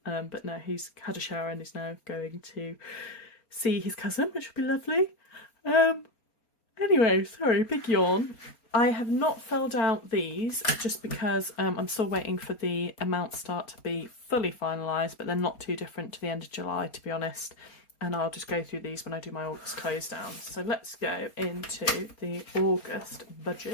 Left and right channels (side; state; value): right; late; 4.3 ms